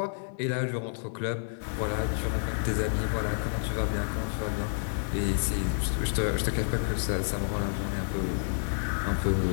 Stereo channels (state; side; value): silent; right; digital silence